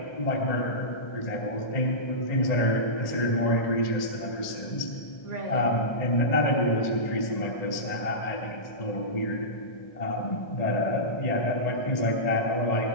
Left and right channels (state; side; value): late; right; 1.8 ms